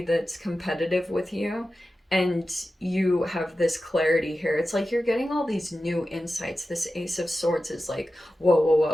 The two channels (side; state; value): both; normal; correlation 0.93